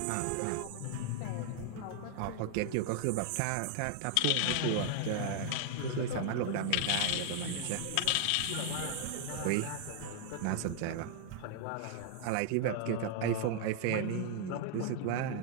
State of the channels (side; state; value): both; different; correlation 0.00